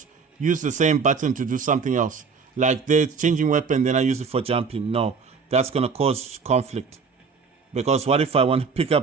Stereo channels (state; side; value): quieter; left; 5.5 dB